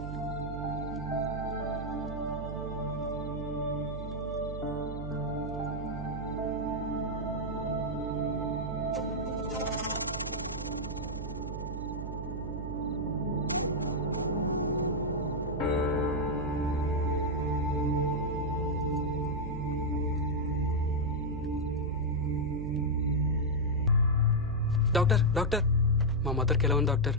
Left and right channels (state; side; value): noise; right; hum, 7 dB below the sound